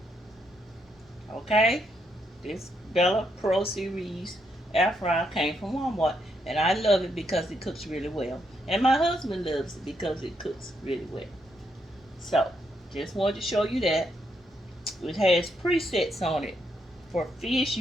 Okay? This Bella Pro Series air fryer came from Walmart. And I love it because it cooks really well. And my husband loves it because it cooks really well. So, just wanted to show you that. It has presets on it. For fish,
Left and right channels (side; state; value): both; normal; correlation 0.78